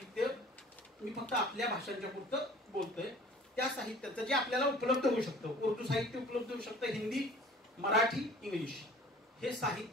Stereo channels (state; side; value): normal; both; correlation 0.48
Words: मी फक्त आपल्या भाषांच्या पुरतं बोलतोय. त्या साहित्याचं जे आपल्याला उपलब्ध होऊ शकतं, उर्दू साहित्य उपलब्ध होऊ शकतं, हिंदी, मराठी, इंग्लिश, हे